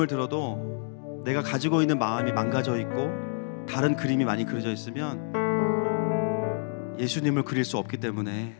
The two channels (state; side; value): silent; right; digital silence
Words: 들어도 내가 가지고 있는 마음이 망가져 있고 다른 그림이 많이 그려져 있으면 예수님을 그릴 수 없기 때문에